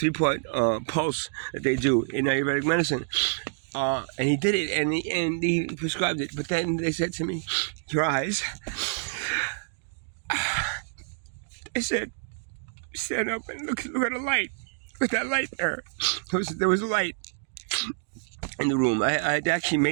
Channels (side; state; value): left; silent; digital silence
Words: pulse that they do in Ayurvedic medicine. And he did it, and he prescribed it. But then they said to me, your eyes. They said, stand up and look at the light. Look at that light there. There was a light in the room. I had actually